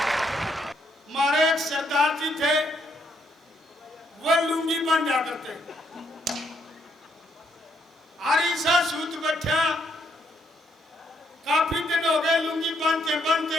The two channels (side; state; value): both; normal; correlation 0.73